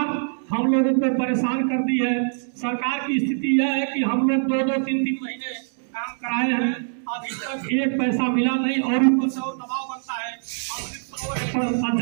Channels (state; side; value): silent; left; 63 dB below the other